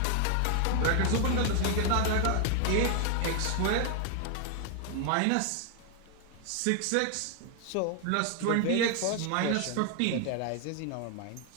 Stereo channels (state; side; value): different; both; correlation 0.00